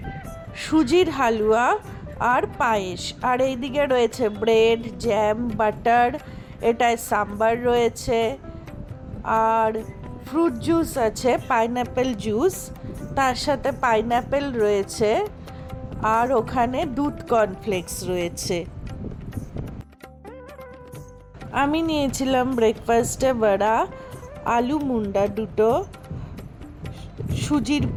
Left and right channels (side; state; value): both; identical; correlation 1.00